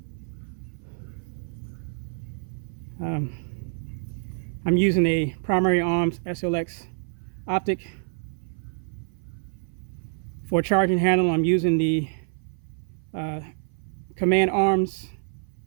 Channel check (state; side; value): silent; left; 57 dB below the other